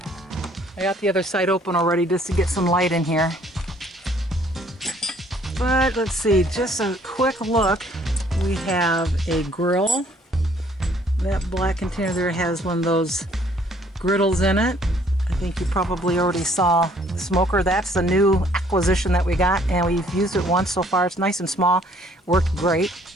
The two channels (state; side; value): normal; both; correlation 0.61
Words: I got the other side open already just to get some light in here. But let's see, just a quick look. We have a grill. That black container there has one of those griddles in it. I think you probably already saw the smoker. That's the new acquisition that we got, and we've used it once so far. It's nice and small, worked great.